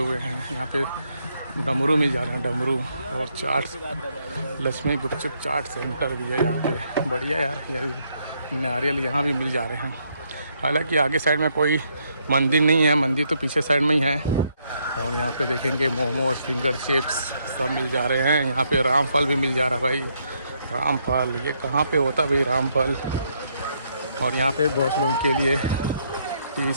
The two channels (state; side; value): inverted; both; correlation -0.74